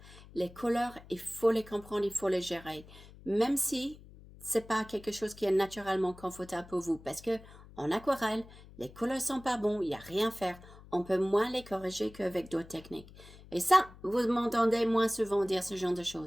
Les couleurs, il faut les comprendre, il faut les gérer. Même si c'est pas quelque chose qui est naturellement confortable pour vous. Parce que en aquarelle, les couleurs sont pas bons, il n'y a rien à faire. On peut moins les corriger qu'avec d'autres techniques. Et ça, vous m'entendez moins souvent dire ce genre de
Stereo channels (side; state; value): left; noise; hum, 20 dB below the sound